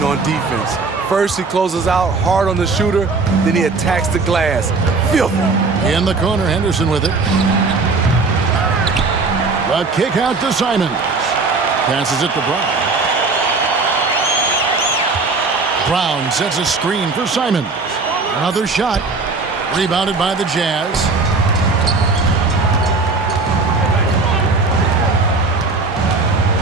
on defense. First he closes out hard on the shooter, then he attacks the glass. Filthy. In the corner, Henderson with it. The kick out to Simons. Passes it to Brown. Brown sets a screen for Simons. Another shot. Rebounded by the Jazz.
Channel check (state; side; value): quieter; left; 4.0 dB